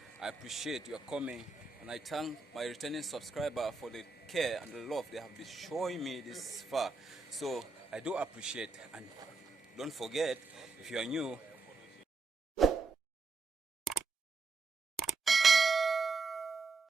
I appreciate your coming, and I thank my returning subscriber for the care and the love they have been showing me this far. So I do appreciate, and don't forget, if you are new,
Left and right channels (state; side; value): quieter; left; 3.9 dB